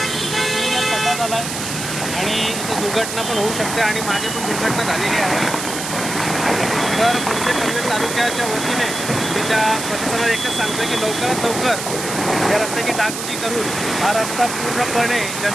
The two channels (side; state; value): right; noise; hiss, 6 dB below the sound